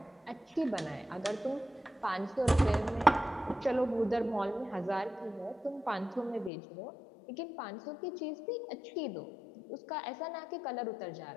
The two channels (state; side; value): drops out; right; at 6.5 s